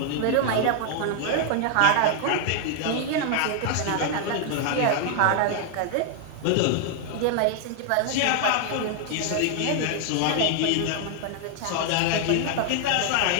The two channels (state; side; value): different; both; correlation 0.00